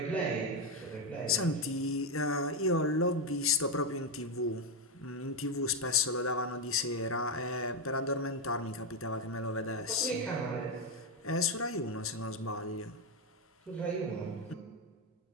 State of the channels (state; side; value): normal; both; correlation 0.07